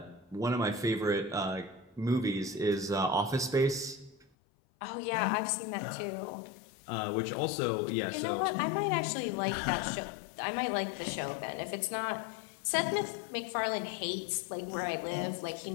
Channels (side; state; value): right; drops out; at 4.2 s